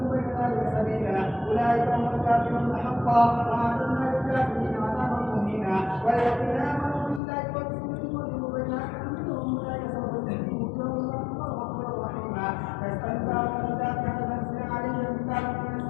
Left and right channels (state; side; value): drops out; right; at 7.2 s